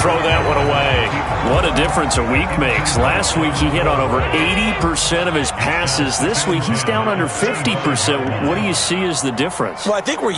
that one away. What a difference a week makes. Last week he hit on over 80% of his passes. This week he's down under 50%. What do you see as the difference? Well, I think we're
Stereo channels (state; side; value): identical; both; correlation 1.00